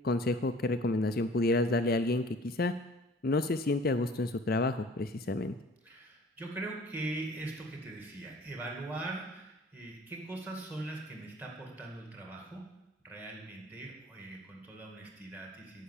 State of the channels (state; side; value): normal; both; correlation 0.50